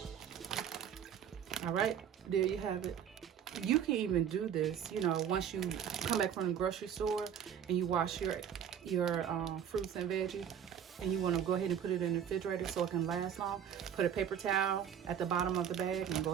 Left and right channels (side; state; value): left; quieter; 8.8 dB